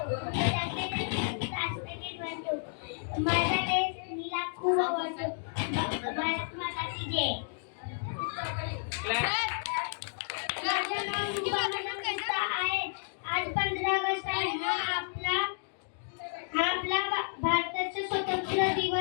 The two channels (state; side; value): silent; right; digital silence